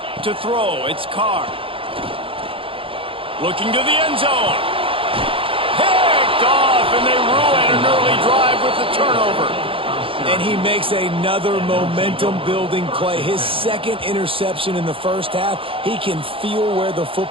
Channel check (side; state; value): left; late; 0.26 ms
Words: To throw, it's Carr. Looking to the end zone. Picked off, and they ruin an early drive with the turnover. And he makes another momentum-building play. His second interception in the first half. He can feel where the